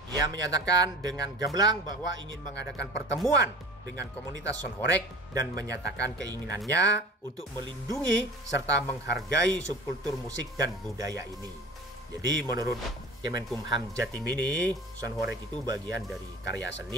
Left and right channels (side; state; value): both; normal; correlation 0.40